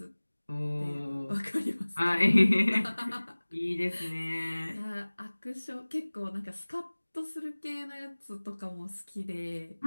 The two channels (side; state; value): both; inverted; correlation -1.00